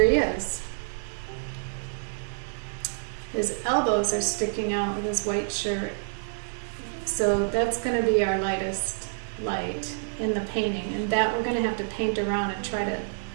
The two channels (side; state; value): left; silent; digital silence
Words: he is. His elbows are sticking out with his white shirt. So that's going to be our lightest light in the painting, and that we're going to have to paint around and try to